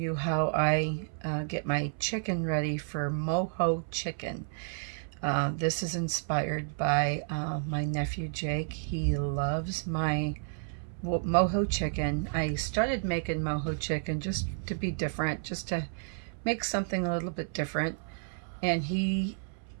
how I get my chicken ready for Mojo chicken. This is inspired by my nephew Jake. He loves my Mojo chicken. I started making Mojo chicken just to be different, just to make something a little bit different. And he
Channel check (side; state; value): left; silent; 57 dB below the other